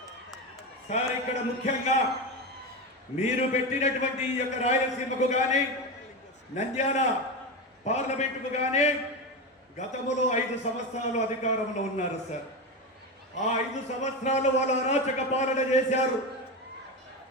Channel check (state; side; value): normal; both; correlation 0.18